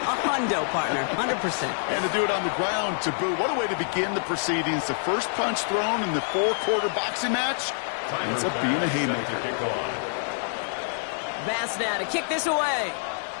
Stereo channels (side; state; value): right; silent; digital silence